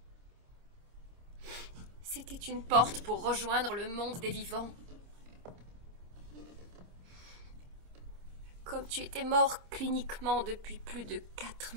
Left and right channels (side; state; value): left; late; 26 ms